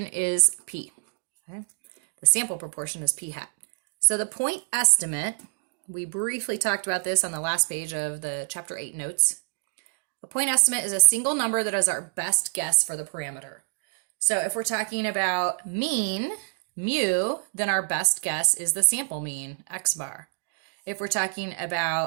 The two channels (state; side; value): silent; left; digital silence